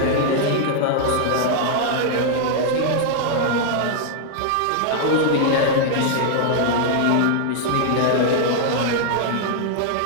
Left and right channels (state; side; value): different; both; correlation -0.01